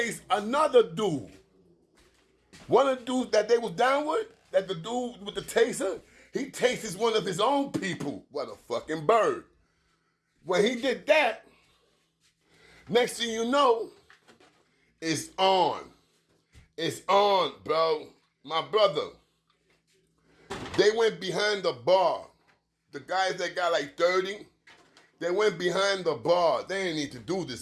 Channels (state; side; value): identical; both; correlation 1.00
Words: another dude. One of the dudes that they was down with, that the dude with the taser, he tastes one of his own people. What a fucking bird. When he did that, next thing you know, it's on. It's on, bro. My brother, they went behind the bar. The guys that got like 30, they went behind the bar. They didn't need to do